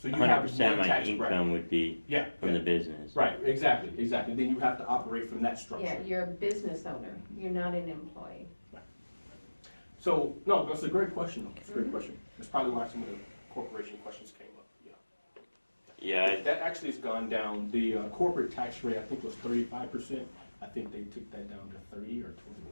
you have 100% of one my tax income bracket. would be yeah, from the business. right, exactly. Then you have to operate from that structure. Yeah, you're a business owner. You're not an employee. So, no, that's a great question, though. It's a great question. That's probably why some of the corporation questions came up, yeah. Yeah, That actually has gone down. The corporate tax rate, I think, was 35%. I think they took that down to 30 or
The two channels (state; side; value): inverted; both; correlation -1.00